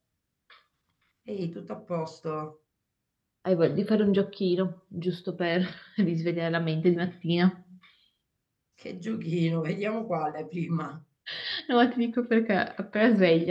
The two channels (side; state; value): both; identical; correlation 1.00